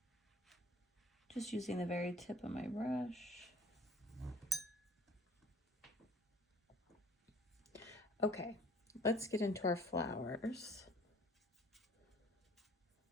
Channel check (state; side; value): normal; both; correlation 0.51